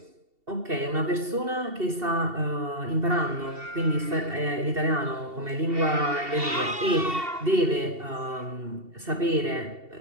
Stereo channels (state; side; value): late; left; 2.7 ms